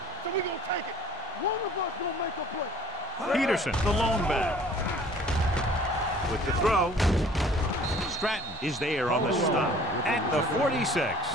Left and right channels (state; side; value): normal; both; correlation 0.52